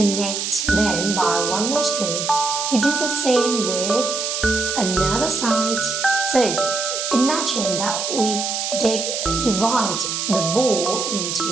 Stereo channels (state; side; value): noise; right; hiss, 2 dB below the sound